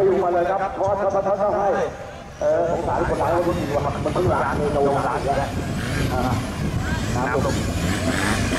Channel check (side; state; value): both; identical; correlation 1.00